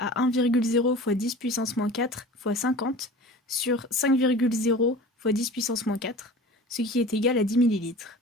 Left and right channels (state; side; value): normal; both; correlation 0.39